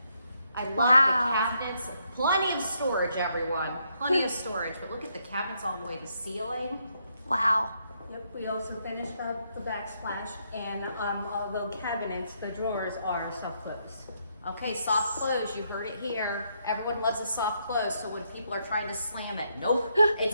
I love the cabinets. Plenty of storage, everyone. Plenty of storage, but look at the cabinets all the way to ceiling. Wow. Yep, we also finished up the backsplash, and although cabinets, the drawers are soft close. Okay, soft close, you heard it here. Everyone loves a soft close, so when people are trying to slam it, nope,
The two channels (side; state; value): both; inverted; correlation -0.76